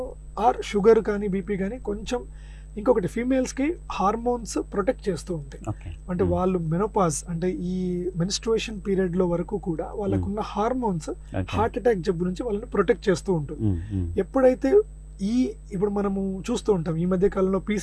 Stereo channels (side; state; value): both; identical; correlation 1.00